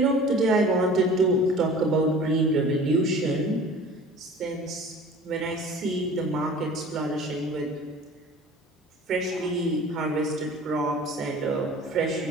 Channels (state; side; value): normal; both; correlation 0.43